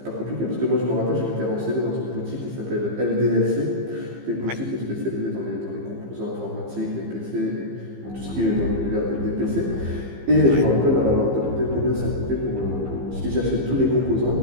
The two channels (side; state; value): left; late; 15 ms